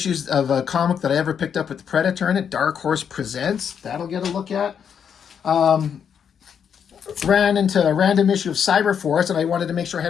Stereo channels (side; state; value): right; quieter; 7.7 dB